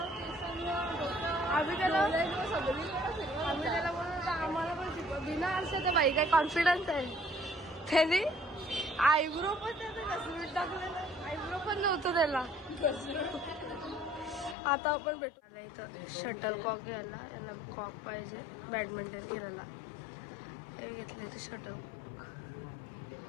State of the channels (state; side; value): drops out; right; at 14.6 s